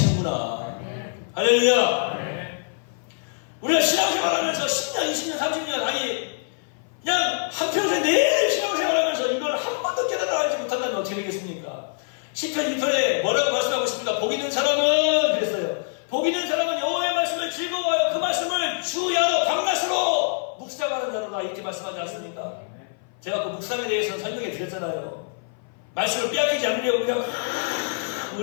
할렐루야. 우리가 신앙생활하면서 10년, 20년, 30년, 아니, 그냥 한평생 내내 신앙생활하면서 이걸 한 번도 깨달아가지 못한다면 어떻게 되겠습니까? 시편 1편에 뭐라고 말씀하고 있습니까? 복 있는 사람은 그랬어요. 복 있는 사람은 여호와의 말씀을 즐거워하여 그 말씀을 주야로 밤낮으로 묵상하는 자로다 이렇게 말씀하지 않습니까? 제가 그 묵상에 대해서 설명해 드렸잖아요. 말씀을 빼앗기지 않으려고 그냥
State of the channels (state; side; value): silent; right; 56 dB below the other